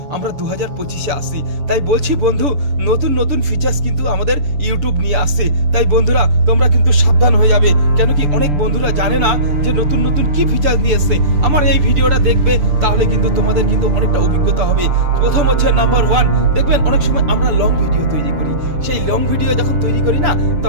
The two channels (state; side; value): late; left; 6.8 ms